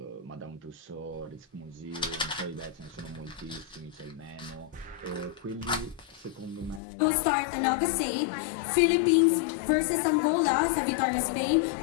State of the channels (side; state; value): right; drops out; at 6.8 s